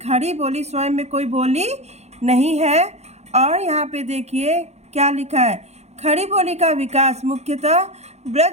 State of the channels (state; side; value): late; left; 0.32 ms